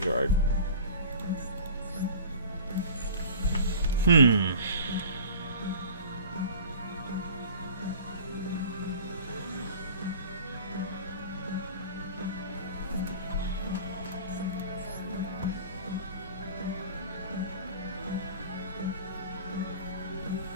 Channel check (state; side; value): inverted; both; correlation -0.41